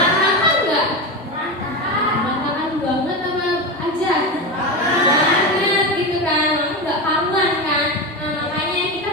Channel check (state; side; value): normal; both; correlation 0.19